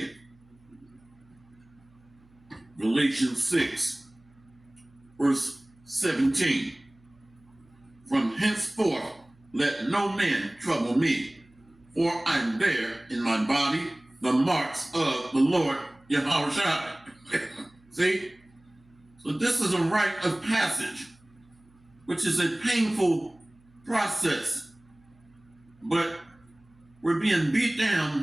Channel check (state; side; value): noise; right; hum, 30 dB below the sound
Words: Galatians 6, verse 17. From henceforth let no man trouble me, for I bear in my body the marks of the Lord Yahushua. See? So this is a rite of passage, which is a painful process. But we're being beat